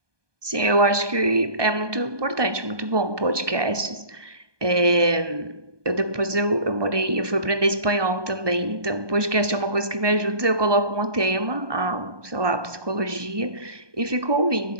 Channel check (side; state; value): left; late; 1.2 ms